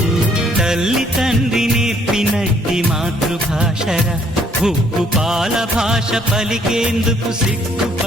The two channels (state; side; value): normal; both; correlation 0.65